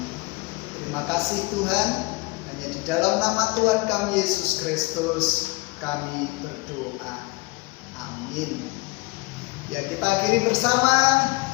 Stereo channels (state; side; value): quieter; right; 25.0 dB